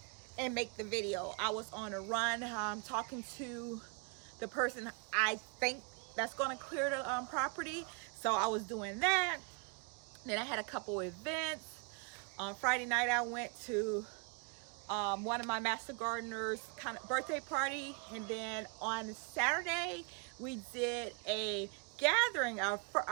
and make the video. I was on a run talking to the person I think that's going to clear the property. So I was doing that. Then I had a couple events. On Friday night I went to one of my master gardeners kind of birthday party, and then on Saturday we did a gathering for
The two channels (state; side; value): quieter; left; 36.8 dB